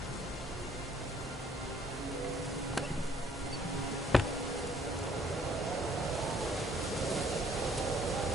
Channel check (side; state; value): both; normal; correlation 0.63